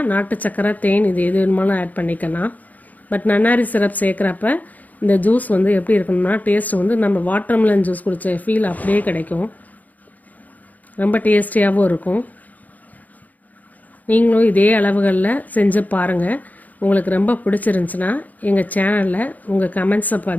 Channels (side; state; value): right; late; 0.079 ms